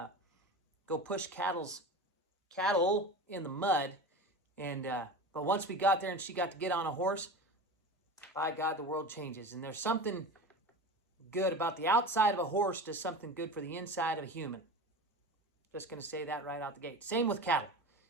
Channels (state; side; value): normal; both; correlation 0.30